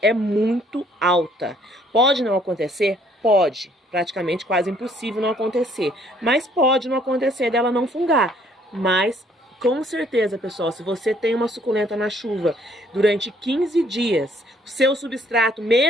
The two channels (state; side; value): normal; both; correlation 0.63